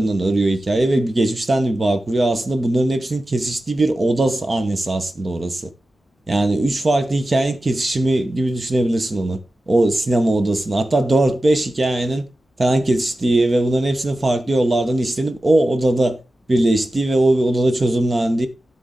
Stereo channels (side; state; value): both; normal; correlation 0.94